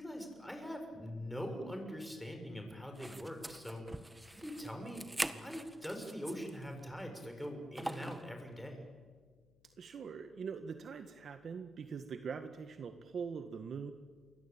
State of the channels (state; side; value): noise; left; hum, 26 dB below the sound